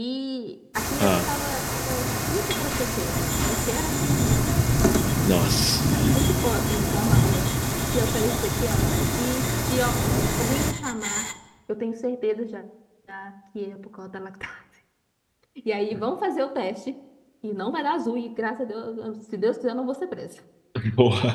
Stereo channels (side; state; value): both; identical; correlation 1.00